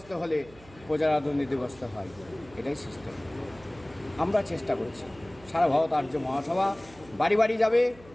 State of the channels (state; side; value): noise; right; hum, 23 dB below the sound